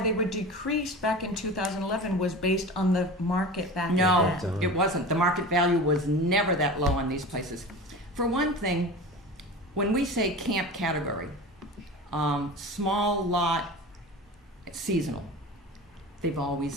they were decreased back in 2011 was based on the market back No, then. it wasn't. The market value was never that low on these places. For one thing, when we say camp category, small lot, seasonal, they've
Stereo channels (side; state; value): both; normal; correlation 0.33